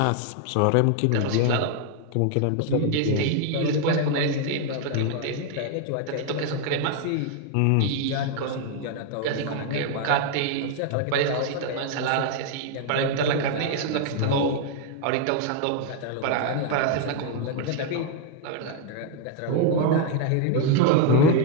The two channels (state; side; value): different; both; correlation 0.00